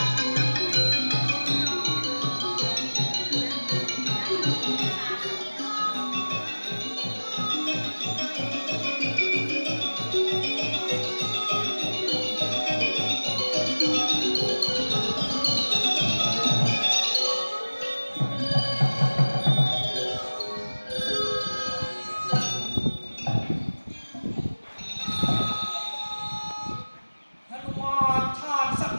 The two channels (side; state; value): both; inverted; correlation -1.00